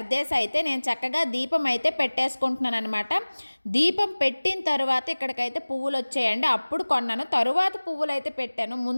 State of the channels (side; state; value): both; inverted; correlation -1.00